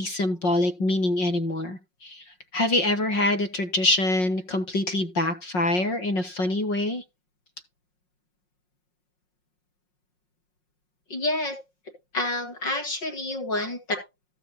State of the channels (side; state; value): right; late; 5.5 ms